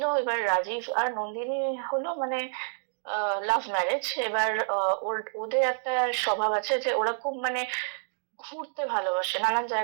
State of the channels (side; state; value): left; silent; digital silence